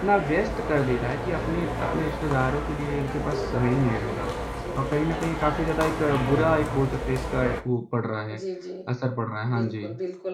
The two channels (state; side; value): identical; both; correlation 1.00